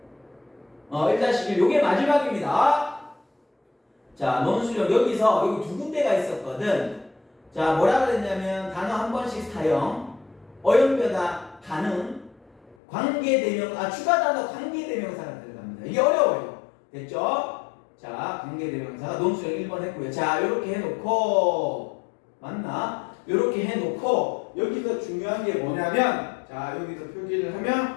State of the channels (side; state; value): right; drops out; at 12.8 s